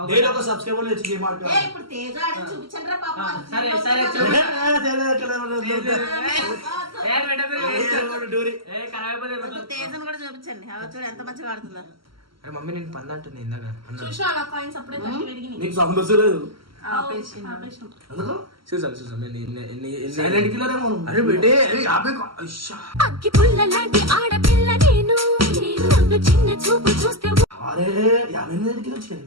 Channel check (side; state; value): left; late; 0.74 ms